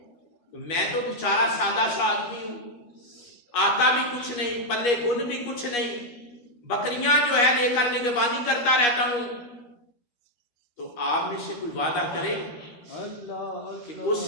میں تو بیچارہ سادہ سا آدمی ہوں، آتا بھی کچھ نہیں، پلے گن بھی کچھ نہیں، بکریاں جو ہے لے کر نگہبانی کرتا رہتا ہوں، تو آپ میں سے کوئی وعدہ کرے کہ اس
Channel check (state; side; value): late; right; 13 ms